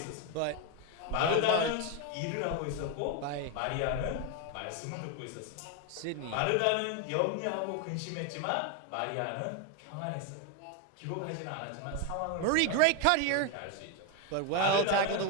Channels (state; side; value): different; both; correlation 0.01